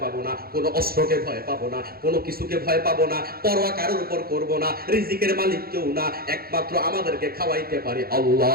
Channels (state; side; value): late; left; 0.44 ms